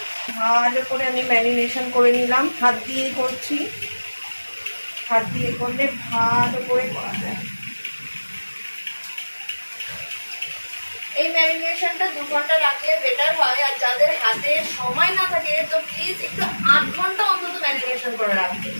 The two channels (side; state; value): both; inverted; correlation -1.00